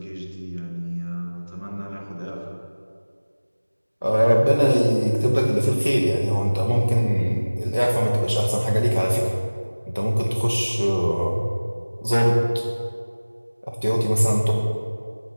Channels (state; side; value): inverted; both; correlation -1.00